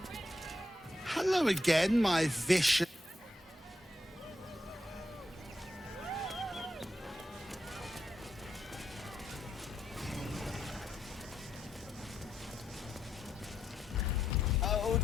Hello again, my vicious... Oh,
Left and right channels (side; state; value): both; normal; correlation 0.82